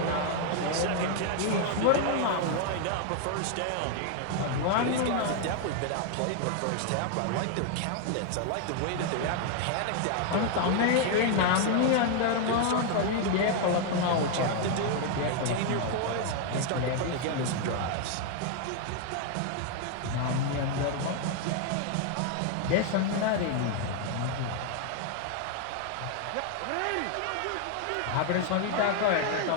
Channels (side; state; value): both; different; correlation 0.00